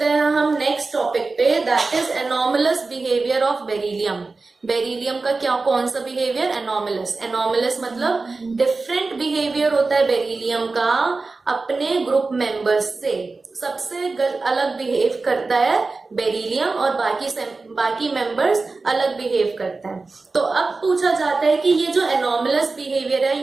हैं हम नेक्स्ट टॉपिक पे, that is anomalous behaviour of beryllium. Beryllium का क्या, कौन सा बिहेवियर, एनॉमलस। एनॉमलस मतलब डिफरेंट बिहेवियर होता है बेरिलियम का अपने ग्रुप मेंबर्स से। सबसे अलग बिहेव करता है बेरिलियम और बाकी मेंबर्स अलग बिहेव करता है। तो अब पूछा जाता है कि ये जो एनॉमलस बिहेवियर है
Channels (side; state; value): left; quieter; 3.8 dB